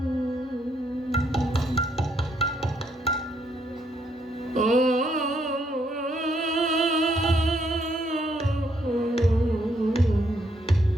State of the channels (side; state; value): both; normal; correlation 0.73